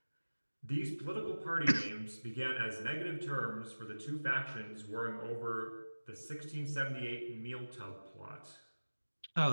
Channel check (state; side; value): inverted; both; correlation -1.00